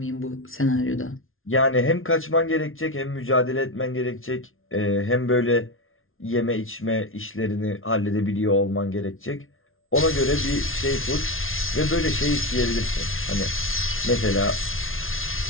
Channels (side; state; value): right; late; 0.60 ms